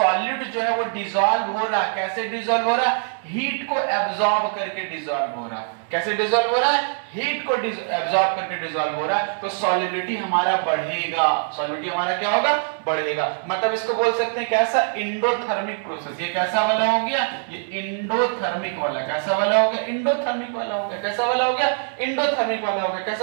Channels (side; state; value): left; silent; 63 dB below the other